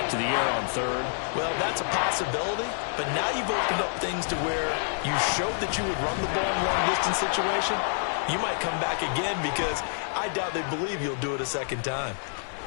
to the air on 3rd? Well, that's a possibility, but now you've opened up things to where you showed that you would run the ball in long-distance situation. You might come back again because I doubt they believe you'll do it a second time.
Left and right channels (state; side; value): silent; right; digital silence